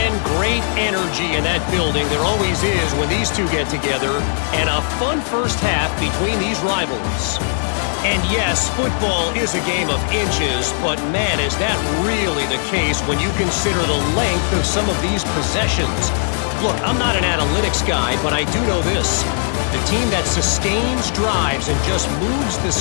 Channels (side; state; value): right; silent; 66 dB below the other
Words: great energy in that building. There always is when these two get together. And a fun first half between these rivals. And yes, football is a game of inches, but man, is that really the case when you consider the length of some of these possessions. Look, I'm not an analytics guy, but I do know this. The team that sustains drives and just moves the